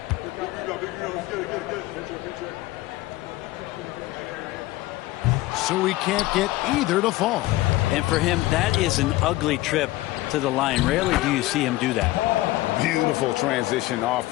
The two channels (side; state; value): right; quieter; 18.0 dB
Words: so he can't get either to fall. And for him, that is an ugly trip to the line. Rarely do you see him do that. Beautiful transition